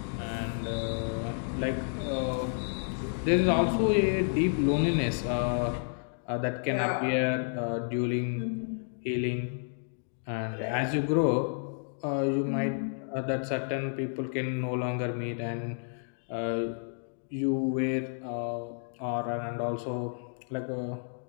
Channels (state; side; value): silent; right; digital silence